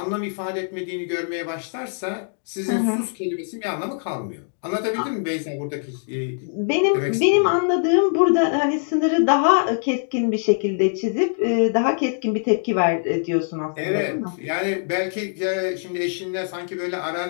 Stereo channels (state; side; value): silent; right; 64 dB below the other